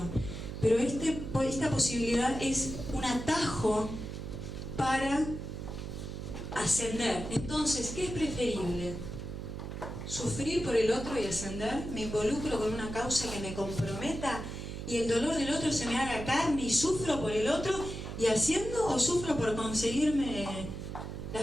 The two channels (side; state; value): right; noise; hum, 7 dB below the sound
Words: Pero esta posibilidad es un atajo para ascender. Entonces, ¿qué es preferible? ¿Sufrir por el otro y ascender? ¿Me involucro con una causa que me comprometa y el dolor del otro se me haga carne y sufro por el otro y asciendo, o sufro por conseguirme la